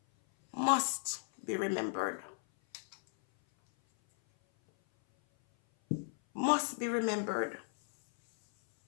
must be remembered. Must be remembered.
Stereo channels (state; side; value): silent; right; 55 dB below the other